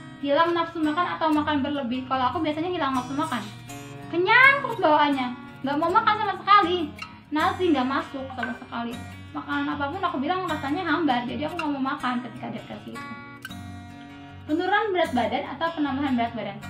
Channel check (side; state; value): both; identical; correlation 1.00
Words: hilang nafsu makan atau makan berlebih. Kalau aku biasanya hilang nafsu makan, kenyang terus bawaannya, nggak mau makan sama sekali, nasi nggak masuk sama sekali, makanan apapun aku bilang rasanya hambar, jadi aku nggak mau makan ketika depresi itu. Penurunan berat badan atau penambahan berat badan.